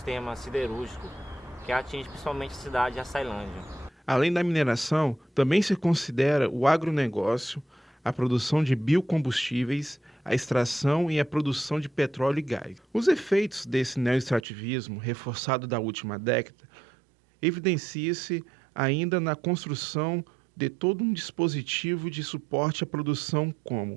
siderúrgico, que atinge principalmente a cidade de Açailândia. Além da mineração, também se considera o agronegócio, a produção de biocombustíveis, a extração e a produção de petróleo e gás. Os efeitos desse neoextrativismo, reforçado da última década, evidencia-se ainda na construção de todo um dispositivo de suporte à produção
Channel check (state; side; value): drops out; left; at 14.5 s